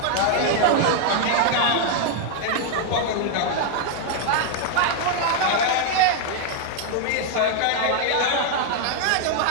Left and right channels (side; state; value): both; different; correlation 0.00